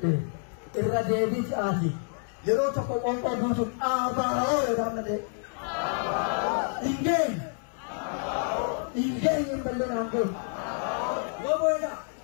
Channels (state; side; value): silent; right; 56 dB below the other